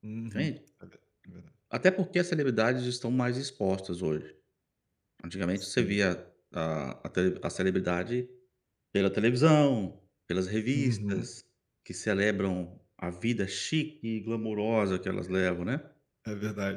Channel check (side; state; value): both; identical; correlation 1.00